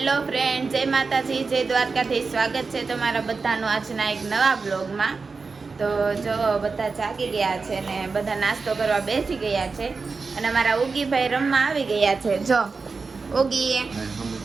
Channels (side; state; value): left; quieter; 4.5 dB